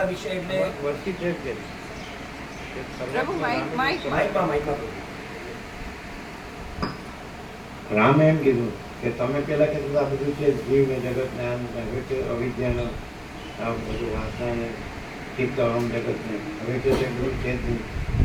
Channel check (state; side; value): identical; both; correlation 1.00